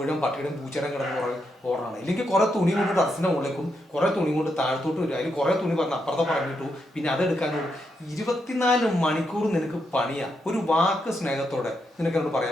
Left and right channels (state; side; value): normal; both; correlation 0.81